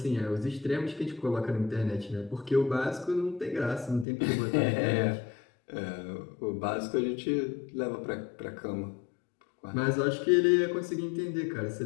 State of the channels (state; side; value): drops out; right; at 4.0 s